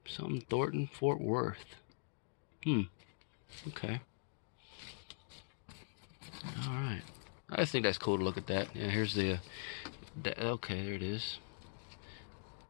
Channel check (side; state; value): right; silent; digital silence